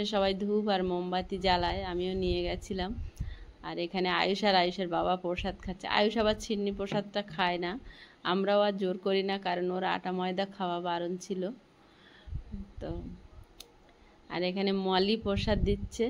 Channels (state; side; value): identical; both; correlation 1.00